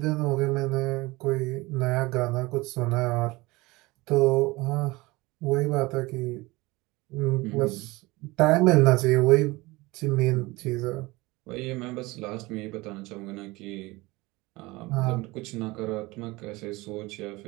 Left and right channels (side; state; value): left; quieter; 21.9 dB